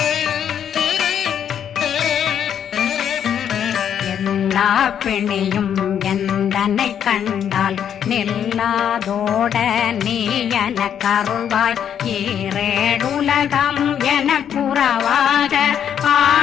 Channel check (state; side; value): quieter; right; 8.9 dB